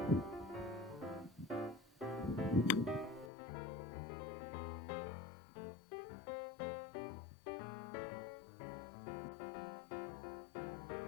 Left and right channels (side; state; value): right; drops out; at 3.3 s